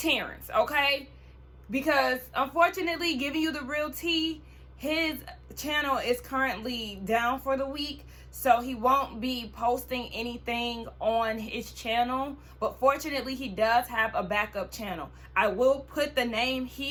okay? Because unfortunately, giving you the real tea, his channel is currently down for the week, so he won't be posting anything on his channel. But fortunately, he does have a backup channel. I will put the name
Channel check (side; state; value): both; identical; correlation 1.00